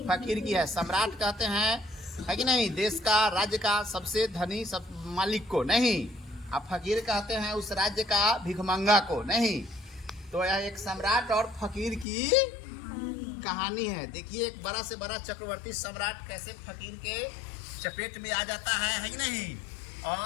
फकीर की है। सम्राट कहते हैं, है कि नहीं, देश का, राज्य का सबसे धनी सब मालिक को नहीं। अब फकीर कहते हैं उस राज्य का भिखमंगा को नहीं। तो यह एक सम्राट और फकीर की कहानी है। देखिए, एक बड़ा से बड़ा चक्रवर्ती सम्राट कैसे फकीर के चपेट में आ जाता है कि नहीं,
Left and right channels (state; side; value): drops out; right; at 12.1 s